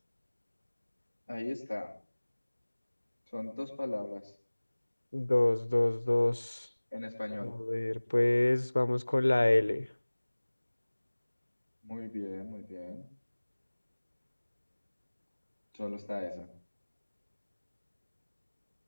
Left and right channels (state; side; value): inverted; both; correlation -1.00